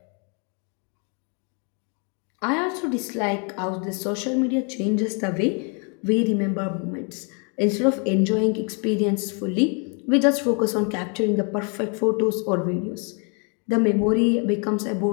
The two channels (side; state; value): right; quieter; 36.9 dB